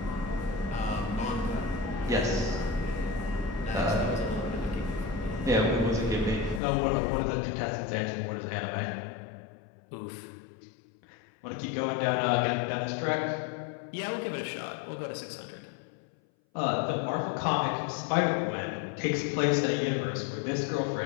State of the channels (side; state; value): right; drops out; at 6.6 s